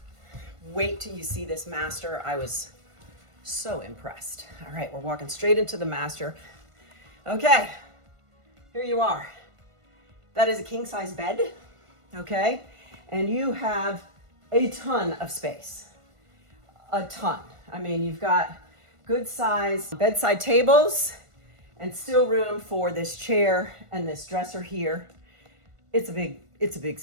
Wait till you see this master. I was so impressed. All right, we're walking straight into the master. Okay, here you are. That is a king size bed, okay? And you have a ton of space, a ton. I mean, you've got good size bedside tables and still room for this chair and this dresser here. It's a big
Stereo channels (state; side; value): late; left; 1.5 ms